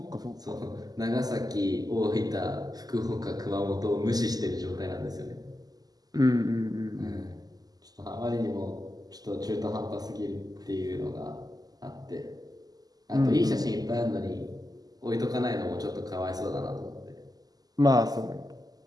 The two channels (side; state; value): left; late; 0.18 ms